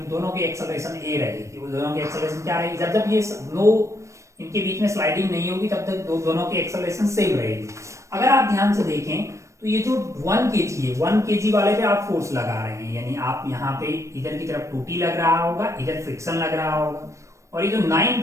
दोनों की एक्सेलरेशन ए रहेगी, वो दोनों की एक्सेलरेशन क्या रहेगी, जब ये इनके बीच में स्लाइडिंग नहीं होगी तब तक दोनों की एक्सेलरेशन सेम रहेगी। अगर आप ध्यान से देखें तो ये जो 1 kg है, 1 kg वाले पे आप फोर्स लगा रहे हैं, यानी आप यहाँ पे इधर की तरफ 2T लग रहा होगा, इधर फ्रिक्शन लग रहा होगा, और ये जो 9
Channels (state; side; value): late; left; 0.15 ms